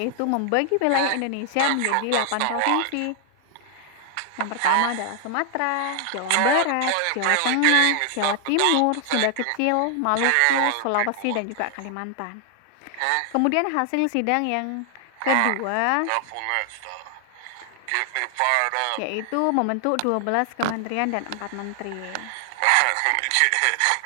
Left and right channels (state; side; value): different; both; correlation 0.00